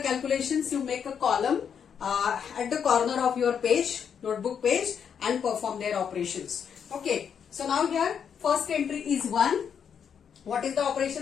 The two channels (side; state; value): right; quieter; 7.5 dB